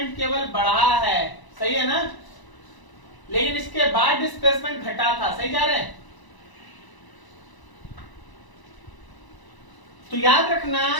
केवल बढ़ा है, सही है ना, लेकिन इसके बाद डिस्प्लेसमेंट घटा था, सही जा रहे हैं। तो याद रखना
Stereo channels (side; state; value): right; late; 1.0 ms